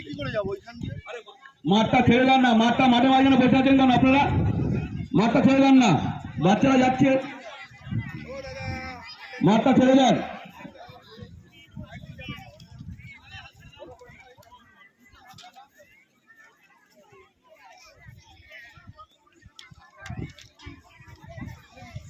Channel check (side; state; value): both; identical; correlation 1.00